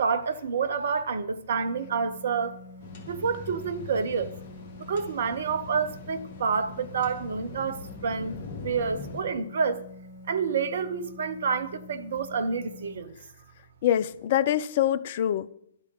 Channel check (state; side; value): inverted; both; correlation -0.54